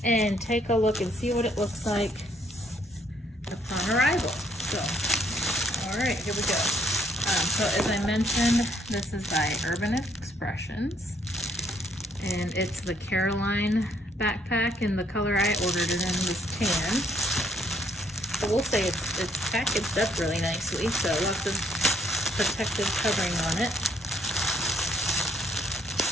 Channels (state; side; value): normal; both; correlation 0.68